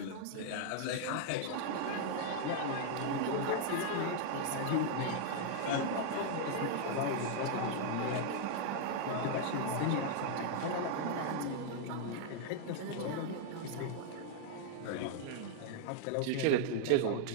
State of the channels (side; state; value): both; different; correlation -0.01